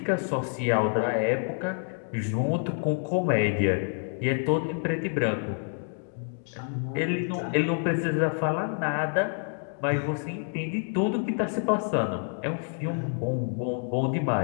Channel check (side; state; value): right; silent; 59 dB below the other